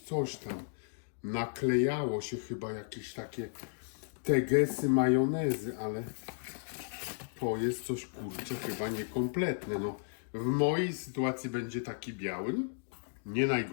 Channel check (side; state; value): right; silent; digital silence